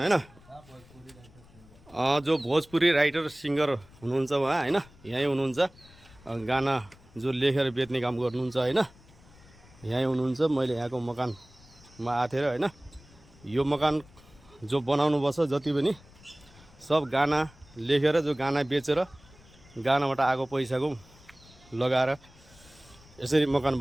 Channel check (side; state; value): left; noise; rumble, 25 dB below the sound